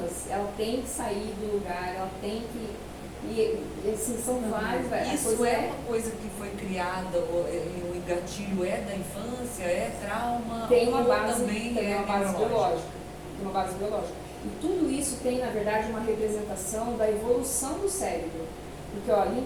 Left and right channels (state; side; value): identical; both; correlation 1.00